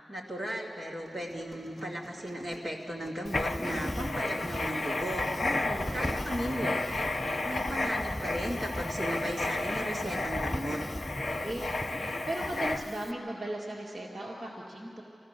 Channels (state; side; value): normal; both; correlation 0.92